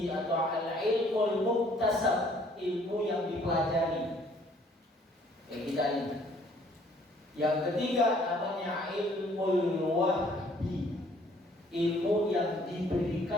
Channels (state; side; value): normal; both; correlation 0.60